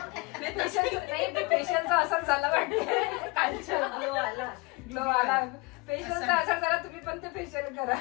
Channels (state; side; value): quieter; right; 25.7 dB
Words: नाही फेशियलचा असर झाला वाटतं. कालच्या ग्लो आला फेशियलचा असर झाला. तुम्ही पण ते फेशियल करा.